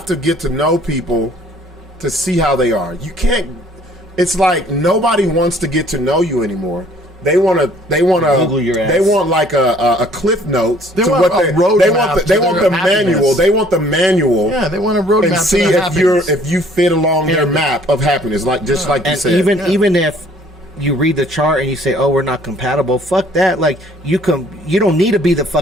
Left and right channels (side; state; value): both; normal; correlation 0.57